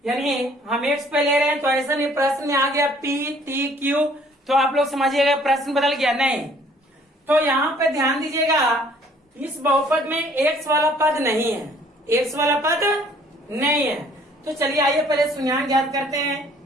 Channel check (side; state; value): both; normal; correlation 0.58